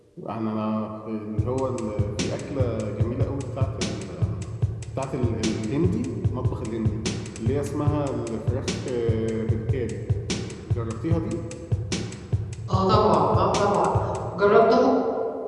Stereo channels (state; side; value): identical; both; correlation 1.00